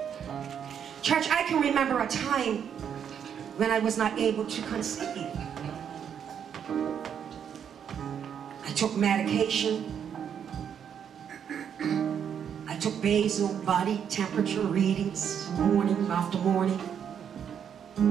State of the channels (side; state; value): left; quieter; 8.2 dB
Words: Church, I can remember a time when I was not able to conceive. I took medication. I took basal body temperature readings morning after morning.